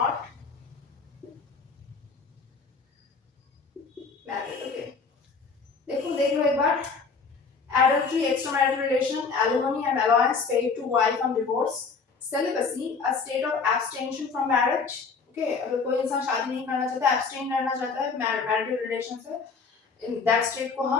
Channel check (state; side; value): quieter; right; 5.0 dB